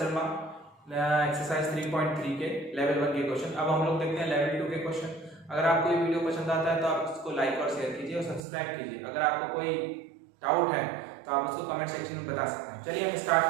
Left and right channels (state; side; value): drops out; left; at 8.4 s